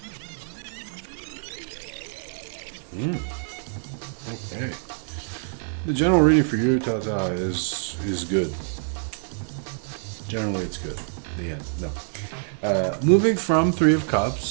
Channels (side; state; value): left; silent; 58 dB below the other